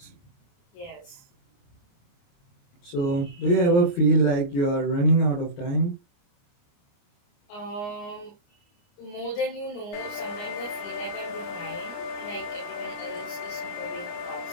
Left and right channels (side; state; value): right; late; 29 ms